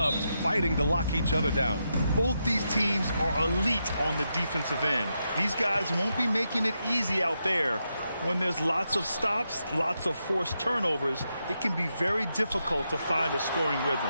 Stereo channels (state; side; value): inverted; both; correlation -0.84